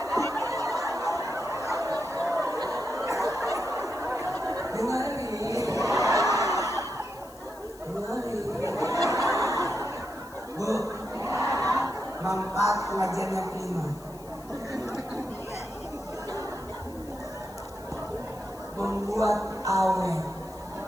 Bu, manfaat pengajian yang kelima. Membuat awet.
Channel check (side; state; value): left; noise; hiss, 22 dB below the sound